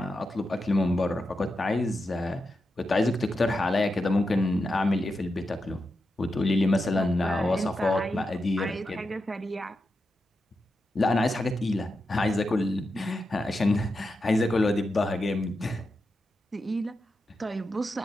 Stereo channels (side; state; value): both; normal; correlation 0.88